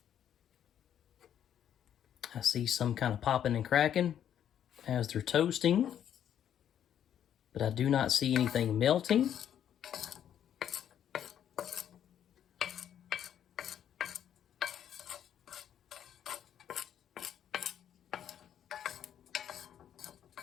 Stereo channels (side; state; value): right; quieter; 9.8 dB